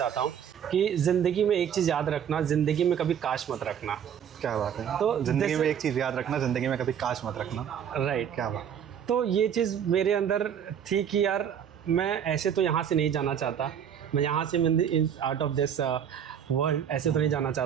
हूँ कि ज़िंदगी में एक चीज़ याद रखना, ज़िंदगी में कभी काश मत रखना। क्या बात है। तो ज़िंदगी में एक चीज़ याद रखना, ज़िंदगी में कभी काश मत रखना, राइट। क्या बात। तो ये चीज़ मेरे अंदर थी कि यार मैं ऐसे तो यहाँ से नहीं जाना चाहता, मैं यहाँ से आउट ऑफ दिस वर्ल्ड ऐसे तो नहीं जाना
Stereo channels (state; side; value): quieter; left; 8.6 dB